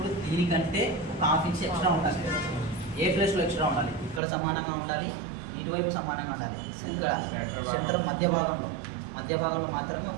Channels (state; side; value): drops out; left; at 4.2 s